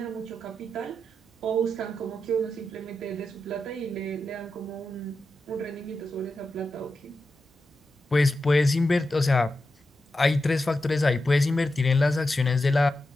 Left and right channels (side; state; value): both; normal; correlation 0.89